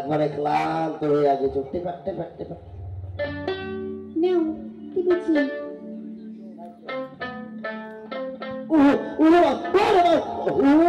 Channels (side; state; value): both; identical; correlation 1.00